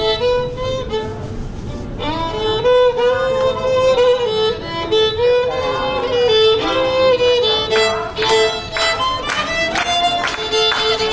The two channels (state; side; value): identical; both; correlation 1.00